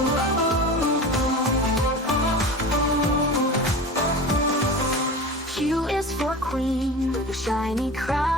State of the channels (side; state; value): both; normal; correlation 0.32